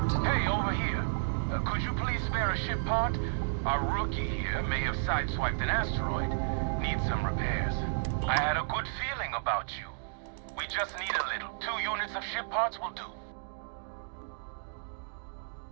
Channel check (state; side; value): silent; left; digital silence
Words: Hey, over here. Could you please spare a ship part? Our rookie here may have sideswiped an asteroid. Needs some repairs. I had a good feeling about you. We just need a little. 2 units of ship parts will do.